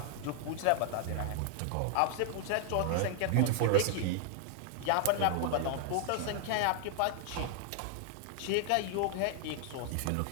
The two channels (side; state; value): both; different; correlation 0.00